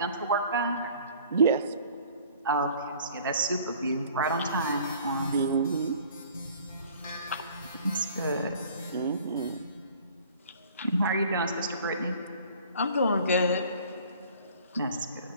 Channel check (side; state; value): both; inverted; correlation -0.50